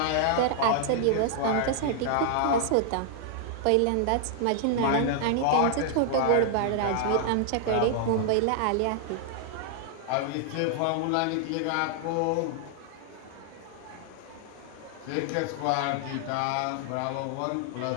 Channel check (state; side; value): different; both; correlation -0.01